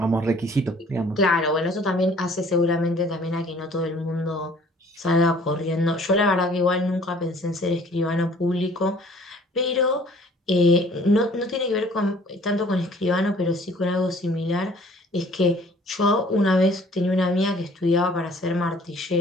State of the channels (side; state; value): both; normal; correlation 0.54